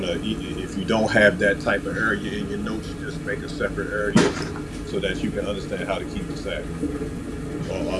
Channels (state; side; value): identical; both; correlation 1.00